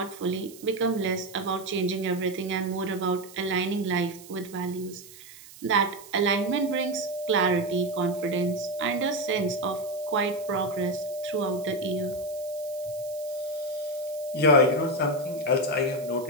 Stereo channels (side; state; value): right; noise; hiss, 19 dB below the sound